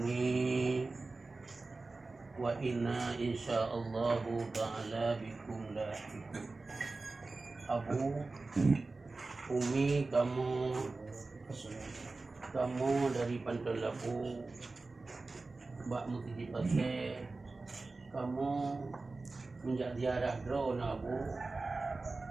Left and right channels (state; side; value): quieter; left; 3.6 dB